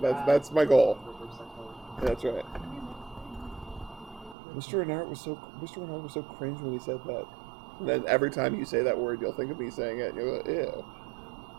that's my goal. That's right. Mr. Renard was so cringe when he said that. And then every time you say that word, you'll think of me saying it. And you'll go, ew.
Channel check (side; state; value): left; drops out; at 4.4 s